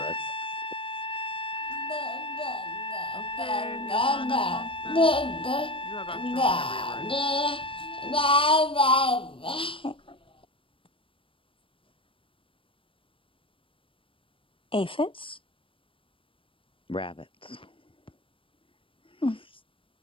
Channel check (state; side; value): late; right; 0.25 ms